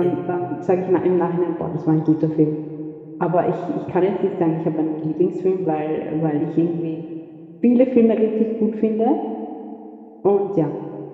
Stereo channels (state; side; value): identical; both; correlation 1.00